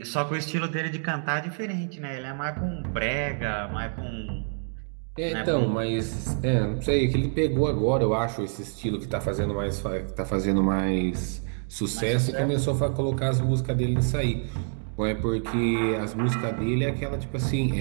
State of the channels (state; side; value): silent; left; 57 dB below the other